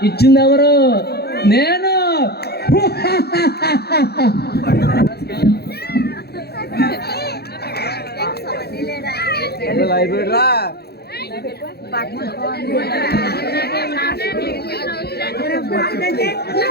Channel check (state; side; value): late; right; 0.46 ms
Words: ఇచ్చింది? ఎవరు? నేను.